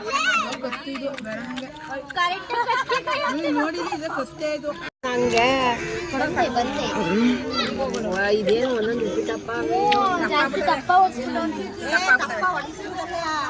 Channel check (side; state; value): both; identical; correlation 1.00